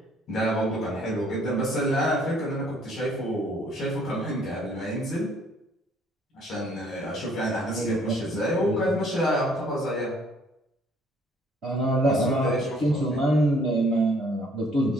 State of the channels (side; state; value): both; normal; correlation 0.61